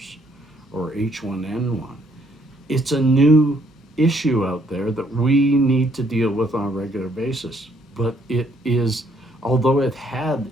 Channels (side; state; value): both; normal; correlation 0.68